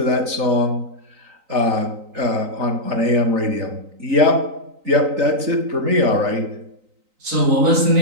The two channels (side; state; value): left; late; 3.9 ms